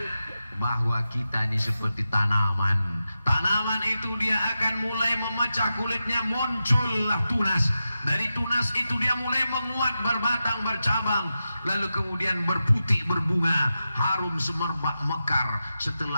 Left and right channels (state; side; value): inverted; both; correlation -0.91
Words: Bahwa kita ini seperti tanaman. Tanaman itu dia akan mulai memecah kulitnya, muncullah tunas. Dari tunas itu dia mulai menguat, berbatang, bercabang, lalu kemudian berputih, berbunga, harum semerbak, mekar.